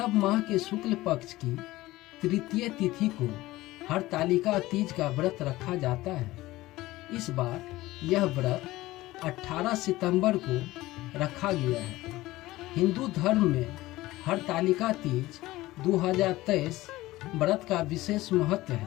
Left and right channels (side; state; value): right; quieter; 17.9 dB